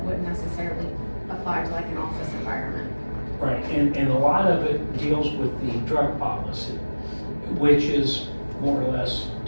wouldn't necessarily apply to like an office environment. Right, and a lot of it deals with the drug policy, which is more or less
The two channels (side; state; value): both; inverted; correlation -1.00